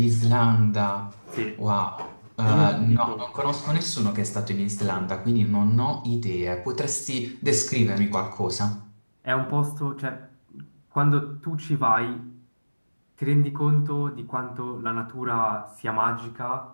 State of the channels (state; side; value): inverted; both; correlation -1.00